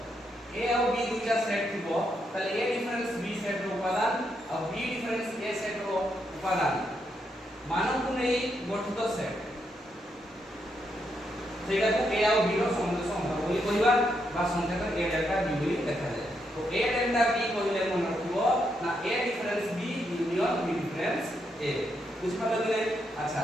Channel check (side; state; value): both; normal; correlation 0.80